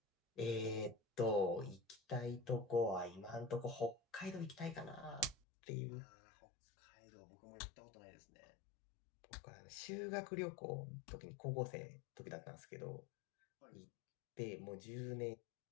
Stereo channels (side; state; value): right; drops out; at 5.4 s